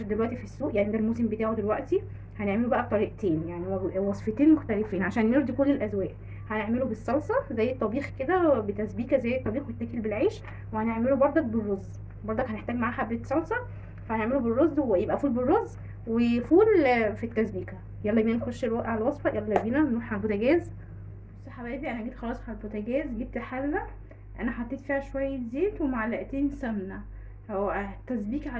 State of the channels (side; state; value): both; identical; correlation 1.00